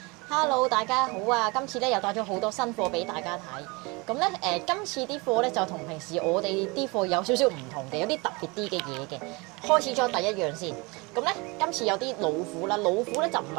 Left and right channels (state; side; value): quieter; left; 26.6 dB